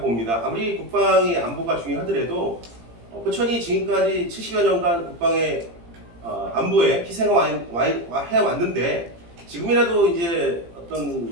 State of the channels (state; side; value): late; left; 17 ms